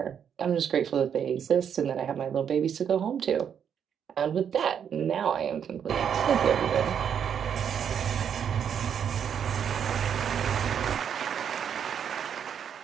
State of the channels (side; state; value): left; quieter; 8.1 dB